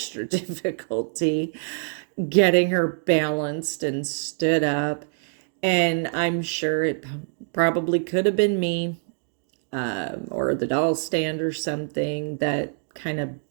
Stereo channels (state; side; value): silent; left; 62 dB below the other